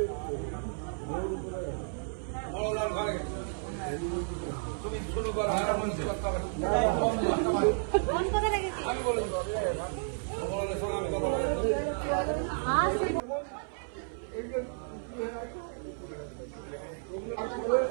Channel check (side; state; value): left; silent; 56 dB below the other